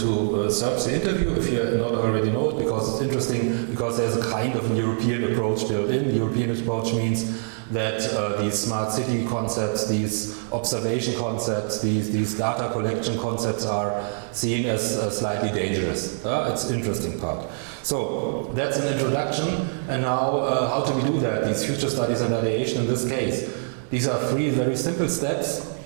search the interview if you not already know it, because it's interesting, because there's a kind of a European approach built in. The European approach means that these smart city concepts, these observation concepts, these data collection concepts are seen as slightly dangerous. It's an interesting part. So that's an introduction, and now how do we do that? These future studies and ideation in this case. These are three very simple steps.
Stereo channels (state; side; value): silent; left; digital silence